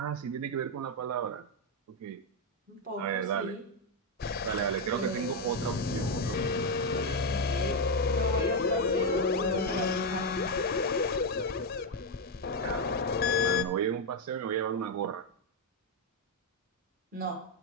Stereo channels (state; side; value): normal; both; correlation 0.04